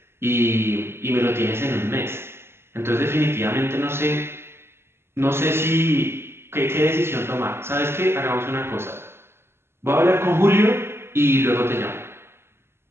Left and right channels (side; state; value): left; late; 0.12 ms